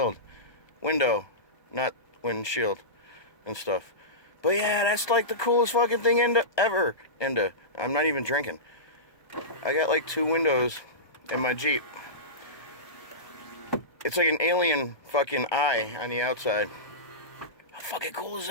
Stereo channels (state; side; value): late; right; 1.2 ms